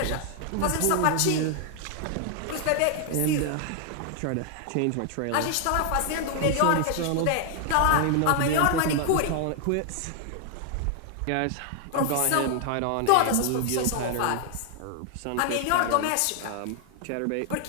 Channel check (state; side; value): different; both; correlation 0.00